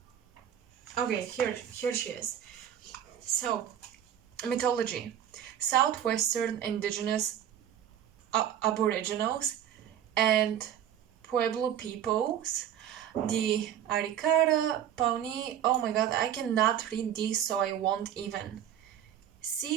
Okay, here she is. So, mythology. Southwestern indigenous aboriginals and Pueblo peoples, the Arikara, Pawnee, oh my god, I cannot read these, so I won't even.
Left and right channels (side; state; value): left; quieter; 10.2 dB